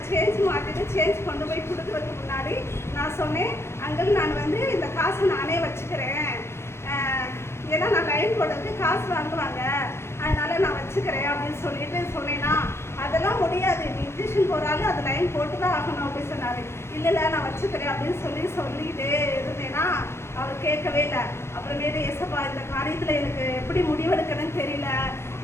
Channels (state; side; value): late; right; 0.12 ms